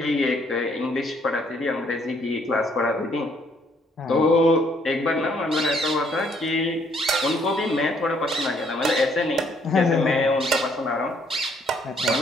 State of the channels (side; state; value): both; normal; correlation 0.67